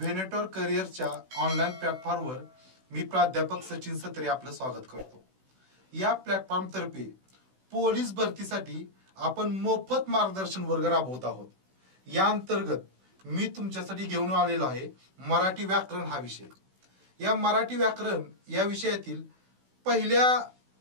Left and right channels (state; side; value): late; left; 16 ms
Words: करिअरच्या ऑनलाईन प्लॅटफॉर्मवर मी प्राध्यापक सचिन सत्रे आपलं स्वागत करतो. या प्लॅटफॉर्म तर्फे पोलीस भरतीसाठी आपण मोफत मार्गदर्शन वर्ग राबवत आहोत. या अंतर्गत मी तुमच्यासाठी घेऊन आलेलो आहे मराठी व्याकरण हा विषय. या मराठी व्याकरण या विषयातील पहिल्या